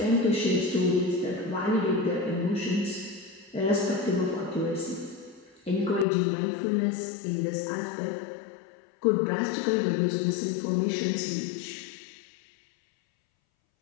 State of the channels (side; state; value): right; drops out; at 6.1 s